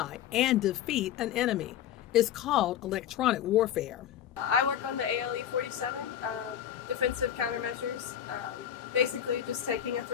and defeat an enemy. It's called electronic warfare. I work on the ALE-47, defensive countermeasures. Basically just taking a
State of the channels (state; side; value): quieter; right; 10.2 dB